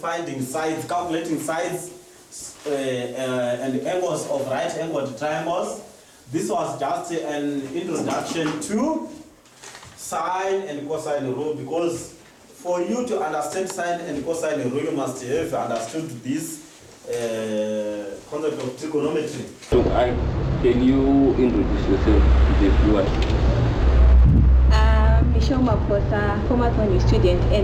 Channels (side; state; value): both; identical; correlation 1.00